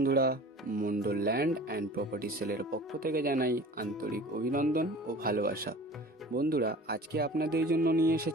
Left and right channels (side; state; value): both; normal; correlation 0.42